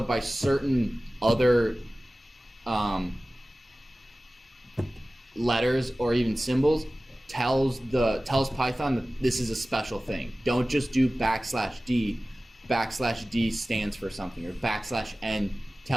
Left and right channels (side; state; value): both; normal; correlation 0.97